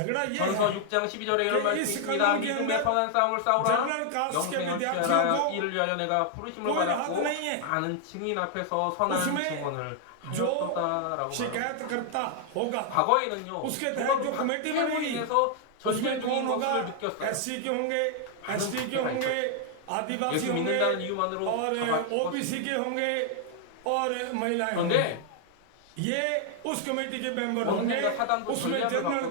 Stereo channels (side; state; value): both; different; correlation 0.00